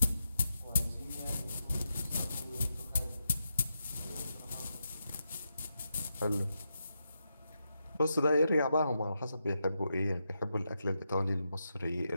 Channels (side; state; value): both; inverted; correlation -0.85